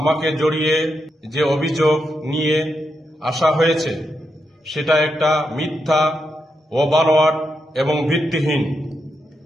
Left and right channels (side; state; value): both; normal; correlation 0.84